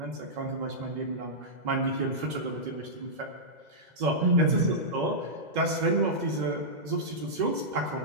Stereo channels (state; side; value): late; left; 2.0 ms